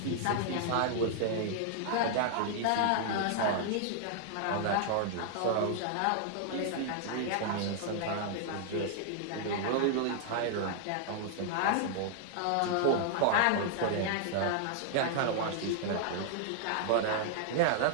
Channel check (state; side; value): different; both; correlation -0.01